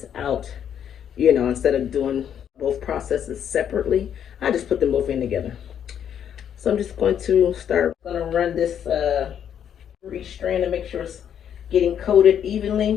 out. You know, instead of doing both processes separately, I just put them both in together. So I'm just going to run this through each strand to make sure it's getting coated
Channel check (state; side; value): quieter; right; 9.0 dB